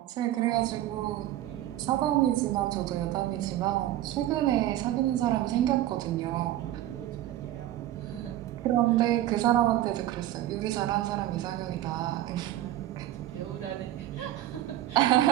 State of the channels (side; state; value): left; quieter; 13.7 dB